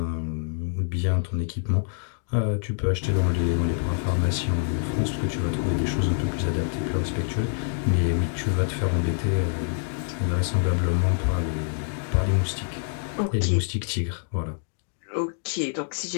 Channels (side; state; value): right; silent; digital silence